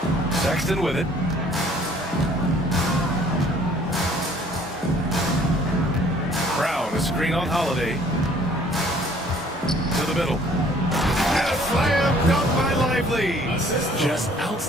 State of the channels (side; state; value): both; normal; correlation 0.57